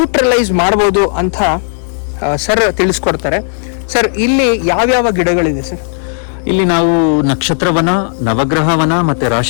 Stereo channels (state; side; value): silent; right; digital silence